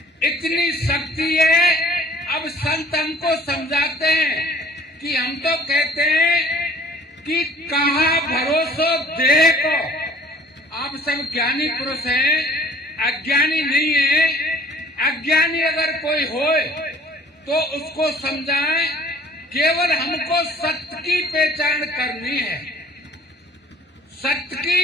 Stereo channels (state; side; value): normal; both; correlation 0.53